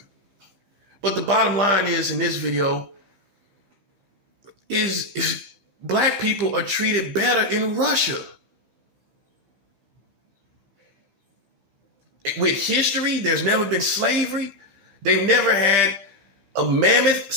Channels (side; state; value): left; late; 15 ms